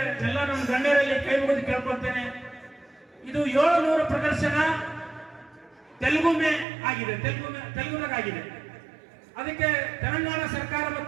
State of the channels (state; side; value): drops out; left; at 6.7 s